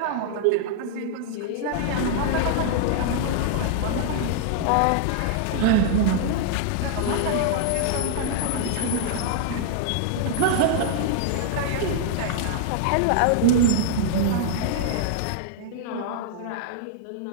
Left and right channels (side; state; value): both; different; correlation -0.01